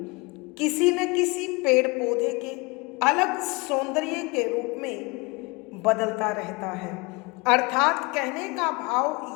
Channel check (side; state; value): right; quieter; 26.9 dB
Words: किसी न किसी पेड़ पौधे के अलग सौंदर्य के रूप में बदलता रहता है। अर्थात कहने का